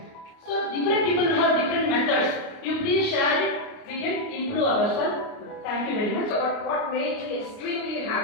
So different people have different methods. You please share it. We can improve ourselves. Thank you very much. But what made me extremely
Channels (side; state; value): right; late; 29 ms